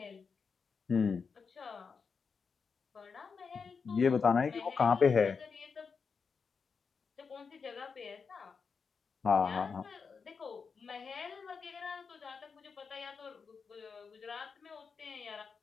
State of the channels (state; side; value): quieter; right; 5.5 dB